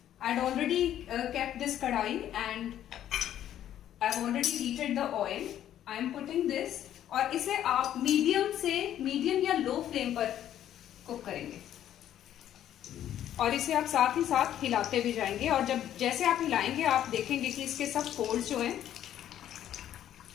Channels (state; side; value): quieter; right; 11.3 dB